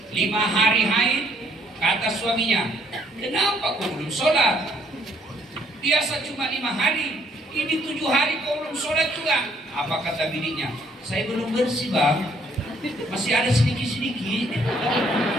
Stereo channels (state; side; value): normal; both; correlation 0.66